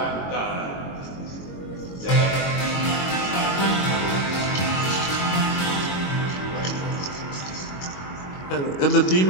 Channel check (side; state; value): right; late; 22 ms